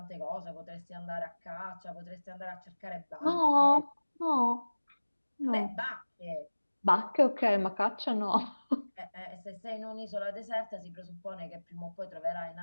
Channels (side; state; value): both; inverted; correlation -1.00